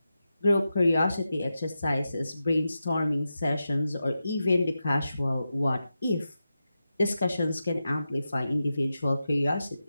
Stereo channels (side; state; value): both; inverted; correlation -0.90